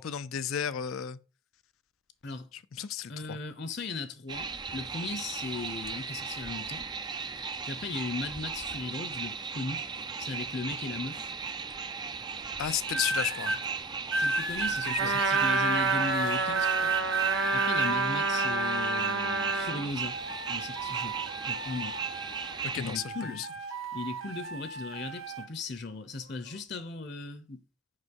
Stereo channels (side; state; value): both; normal; correlation 0.33